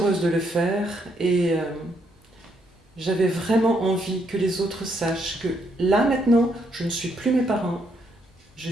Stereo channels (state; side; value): normal; both; correlation 0.74